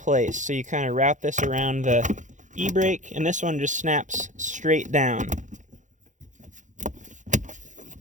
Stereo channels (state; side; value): late; left; 0.36 ms